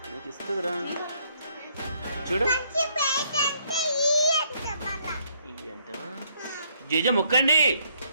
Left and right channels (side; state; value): both; inverted; correlation -0.68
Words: నీకు ఇస్తుందిరా. చూడు అంటవా జేజ మొక్కండి